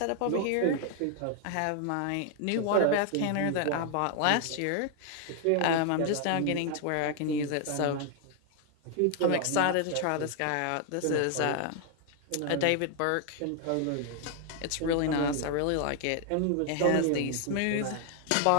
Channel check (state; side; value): different; both; correlation 0.00